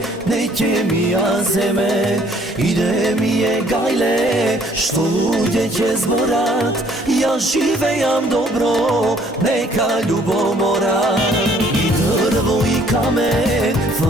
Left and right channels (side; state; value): both; normal; correlation 0.61